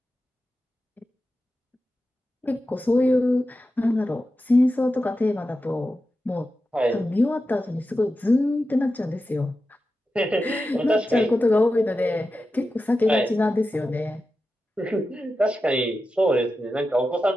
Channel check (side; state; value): both; normal; correlation 0.92